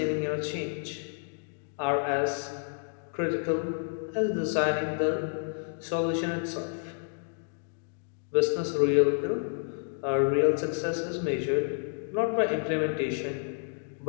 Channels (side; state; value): right; silent; digital silence